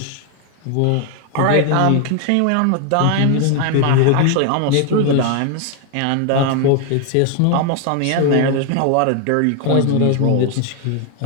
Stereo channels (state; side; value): different; both; correlation 0.01